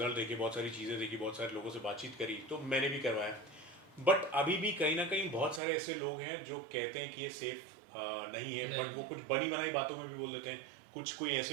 देखे, बहुत सारी चीज़ें देखी, बहुत सारे लोगों से बातचीत करी, तो मैंने भी करवाया। बट अभी भी कहीं ना कहीं बहुत सारे ऐसे लोग हैं जो कहते हैं कि ये सेफ नहीं है, बट वो कुछ बनी बनाई बातों में भी बोल देते हैं। कुछ कोई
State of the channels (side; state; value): left; drops out; at 5.6 s